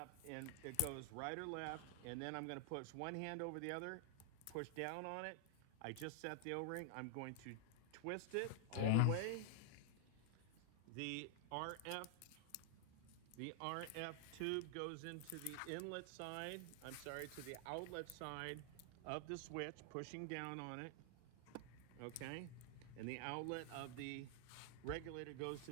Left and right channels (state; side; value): different; both; correlation -0.01